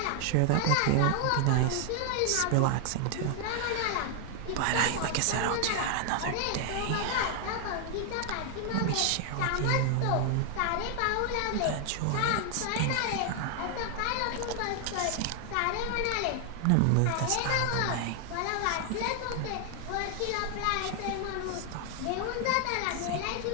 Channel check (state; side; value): different; both; correlation 0.00